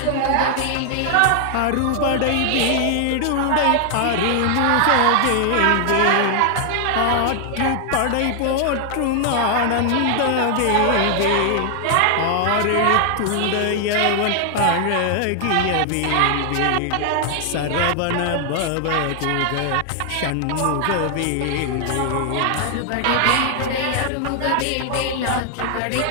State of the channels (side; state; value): both; different; correlation 0.00